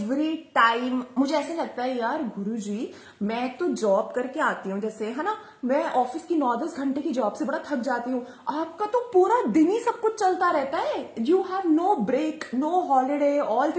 टाइम मुझे ऐसे लगता है यार गुरुजी, मैं तो जॉब करके आती हूँ जैसे, है ना, मैं ऑफिस की 9-10 घंटे की जॉब से बड़ा थक जाती हूँ, आपका तो पूरा दिन ही सब कुछ चलता रहता है, you have no break, no holiday, all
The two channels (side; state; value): both; identical; correlation 1.00